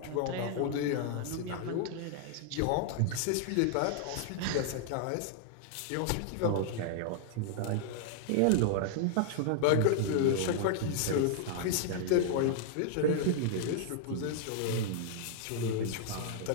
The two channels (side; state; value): both; different; correlation -0.01